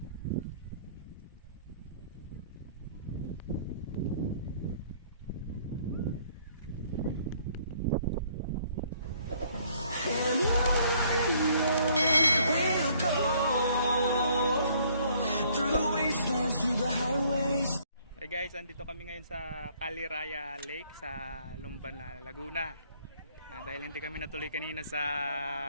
Hey guys, andito kami ngayon sa Caliraya Lake sa Lumban, Laguna. Dahil hindi kami natuloy kanina sa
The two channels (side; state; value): both; inverted; correlation -0.62